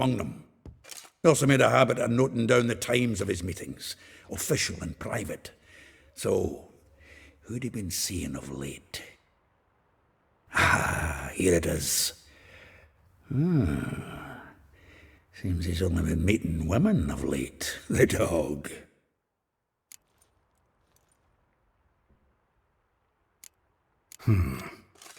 them. He also made a habit of noting down the times of his meetings, official and private. So, who'd he been seeing of late? Ah, here it is. Seems he's only been meeting women of late, the dog.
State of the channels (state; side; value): identical; both; correlation 1.00